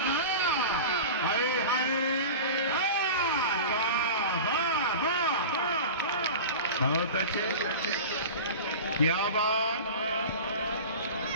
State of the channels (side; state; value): both; inverted; correlation -0.32